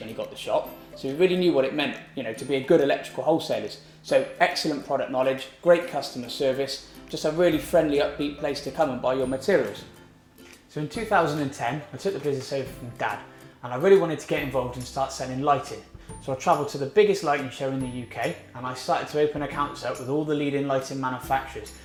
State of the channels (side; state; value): both; identical; correlation 1.00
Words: he got the shop, so he really knew what it meant, to be a good electrical wholesalers. So excellent product knowledge, great customer service, just a really friendly, upbeat place to come and buy your materials. So in 2010, I took the business over from Dad, and I really wanted to get involved and start selling lighting. So I travelled to the biggest lighting show in the UK, and I started to open accounts up with all the leading lighting manufacturers.